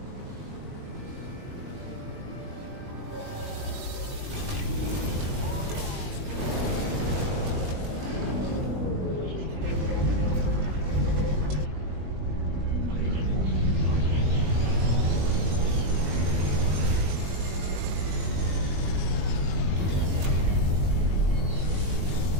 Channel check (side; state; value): left; late; 21 ms